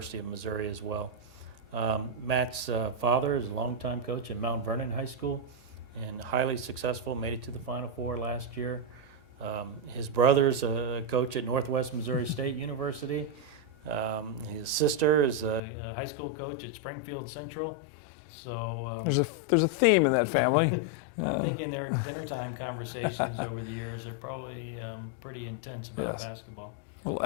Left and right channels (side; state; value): right; drops out; at 15.6 s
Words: of Missouri as well. Matt's father is a longtime coach at Mount Vernon High School and highly successful, made it to the Final Four last year. His brother's a coach at Northwest Missouri State University. His sister is a high school coach at Springfield Central. So there's a theme in that family. I'm thinking their dinner time conversations over the years are probably pretty intense about basketball. Little